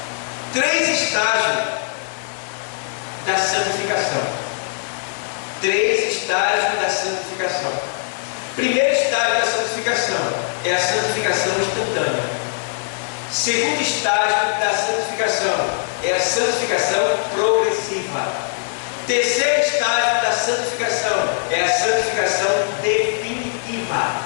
3 estágios da santificação. 3 estágios da santificação. Primeiro estágio da santificação é a santificação instantânea. Segundo estágio da santificação é a santificação progressiva. Terceiro estágio da santificação é a santificação definitiva.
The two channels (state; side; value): silent; right; 62 dB below the other